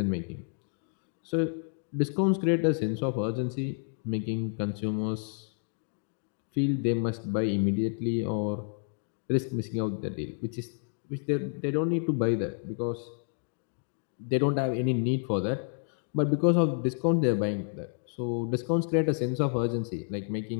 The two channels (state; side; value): silent; right; 58 dB below the other